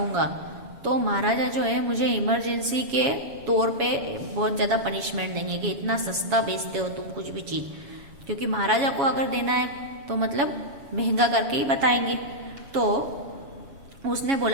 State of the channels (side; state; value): left; late; 7.1 ms